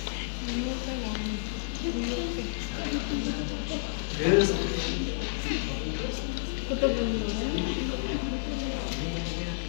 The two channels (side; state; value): right; silent; digital silence